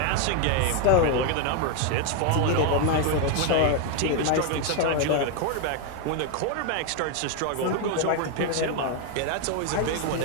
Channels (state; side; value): different; both; correlation 0.01